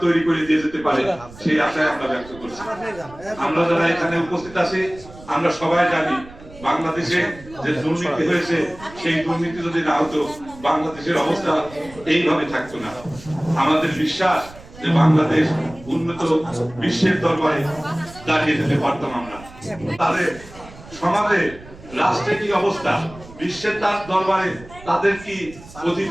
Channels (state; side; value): noise; right; rumble, 19 dB below the sound